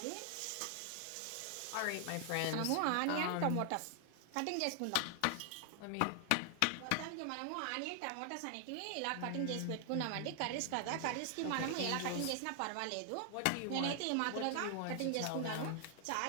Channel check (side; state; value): both; different; correlation 0.00